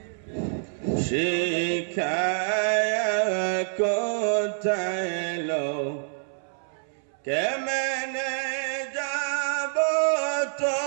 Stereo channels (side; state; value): left; silent; 60 dB below the other